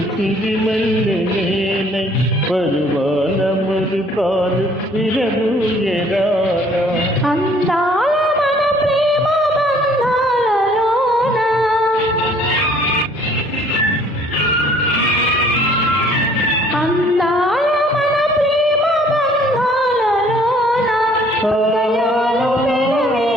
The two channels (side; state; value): both; normal; correlation 0.58